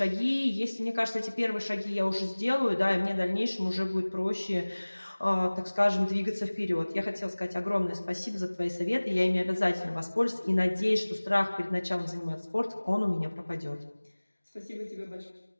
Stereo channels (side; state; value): both; inverted; correlation -1.00